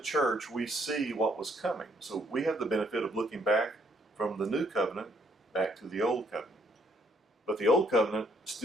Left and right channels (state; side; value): normal; both; correlation 0.67